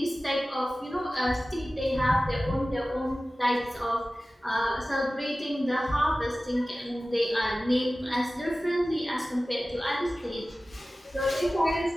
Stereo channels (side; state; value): both; normal; correlation 0.96